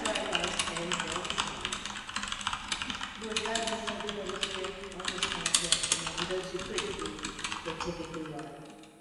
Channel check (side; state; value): both; identical; correlation 1.00